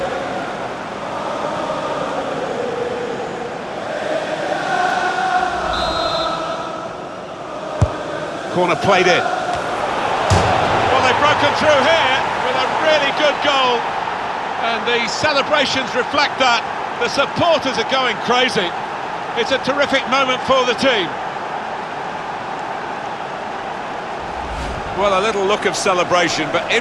Corner played in. Broken through here with a really good goal, and the celebrations reflect that. The supporters are going crazy. It's a terrific moment for the team. Well, a little look of celebration, but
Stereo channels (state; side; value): identical; both; correlation 1.00